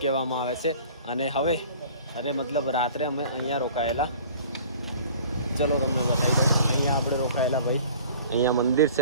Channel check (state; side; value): inverted; both; correlation -0.47